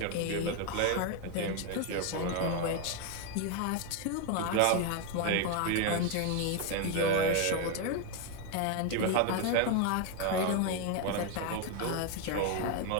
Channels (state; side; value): different; both; correlation 0.01